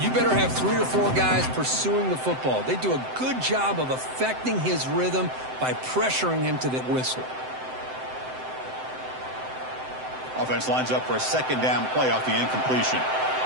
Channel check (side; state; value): left; late; 7.8 ms